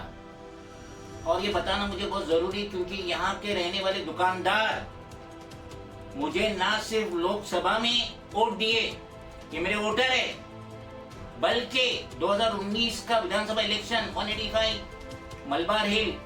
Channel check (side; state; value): both; identical; correlation 1.00